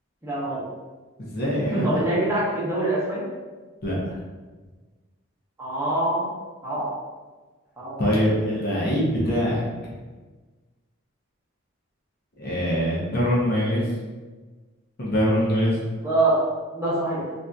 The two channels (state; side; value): normal; both; correlation 0.42